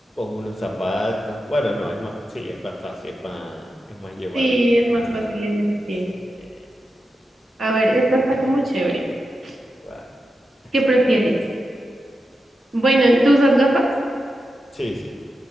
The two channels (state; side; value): normal; both; correlation 0.89